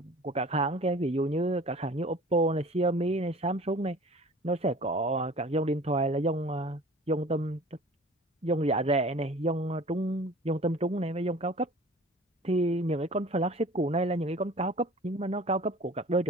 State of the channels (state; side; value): normal; both; correlation 0.45